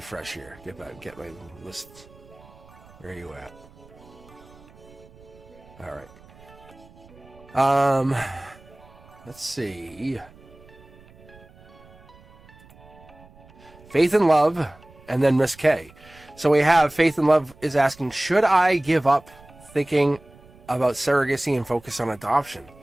here. Get my list. Where are you at? All right. Let's see. Faith and Love, and then Miss K. So we have Faith and Love is asking, should I give up thinking about surrogacy and focus on adoption?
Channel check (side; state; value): right; noise; rumble, 24 dB below the sound